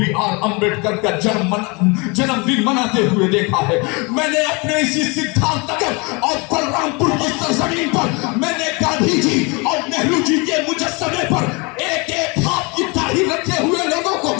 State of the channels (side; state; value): right; quieter; 28.9 dB